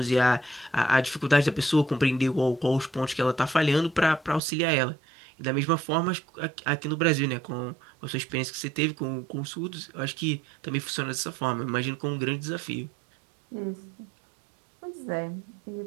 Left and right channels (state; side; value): drops out; left; at 4.4 s